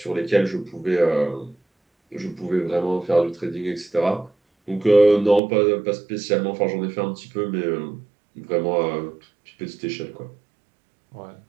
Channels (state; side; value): drops out; left; at 5.4 s